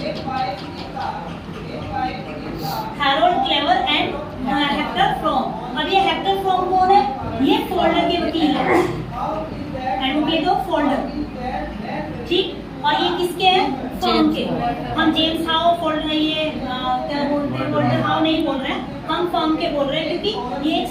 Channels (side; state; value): both; identical; correlation 1.00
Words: Harold clever and Hector from. अब ये हेक्टर फ्रॉम कौन है? ये फोल्डर के वकील है, एडवोकेट ऑफ फोल्डर, ठीक। और ये किसके हैं? फर्म के। हम जेम्स हाउ फोल्डर, ये क्या बोलते हैं, फोल्डर हाउ नहीं बोल रहे हैं, हम फर्म के बोल रहे हैं, क्योंकि ये एक